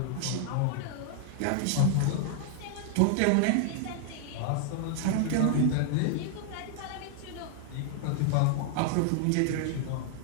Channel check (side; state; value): both; different; correlation 0.00